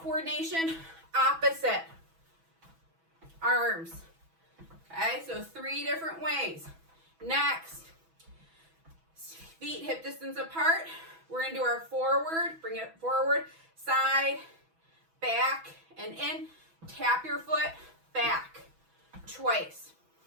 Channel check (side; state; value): left; late; 6.1 ms